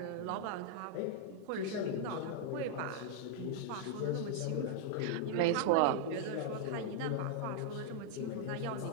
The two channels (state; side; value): different; both; correlation -0.01